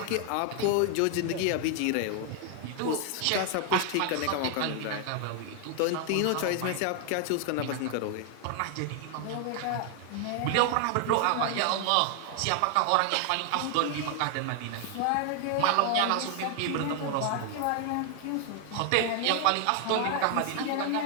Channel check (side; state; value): both; different; correlation 0.00